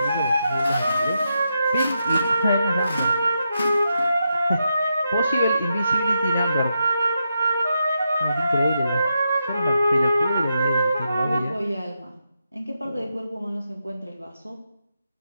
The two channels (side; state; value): both; inverted; correlation -0.85